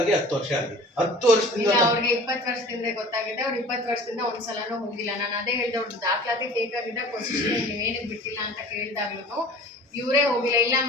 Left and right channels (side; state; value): both; normal; correlation 0.44